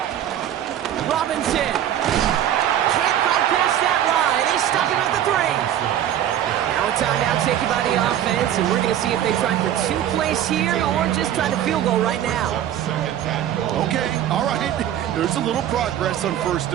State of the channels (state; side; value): quieter; left; 11.1 dB